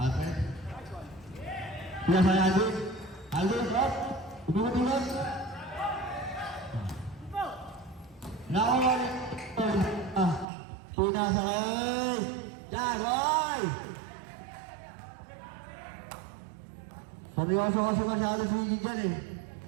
Pinasakay Alvin. Alvin, up. Umikot-ikot. Nakawal. Pinasakay. Jagoy! Seryoso kasi masyado si Gigi dyan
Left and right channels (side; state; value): left; drops out; at 10.5 s